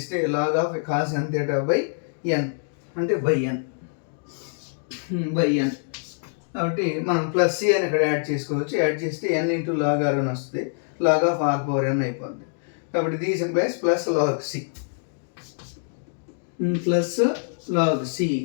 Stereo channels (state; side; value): silent; right; digital silence